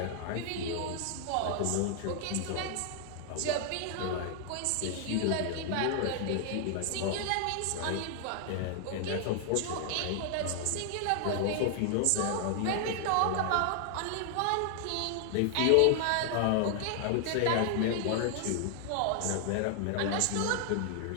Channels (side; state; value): both; different; correlation 0.00